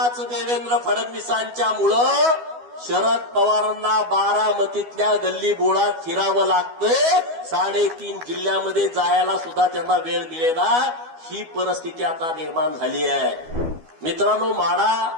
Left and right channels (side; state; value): left; late; 12 ms